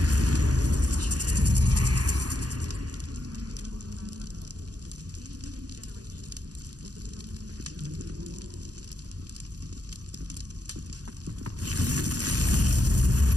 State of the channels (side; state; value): left; late; 0.68 ms